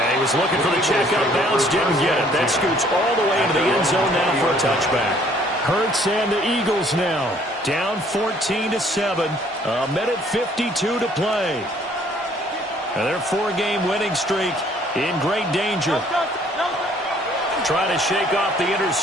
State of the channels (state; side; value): normal; both; correlation 0.60